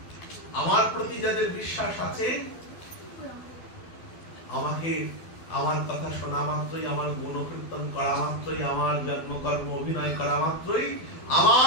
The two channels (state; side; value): late; right; 12 ms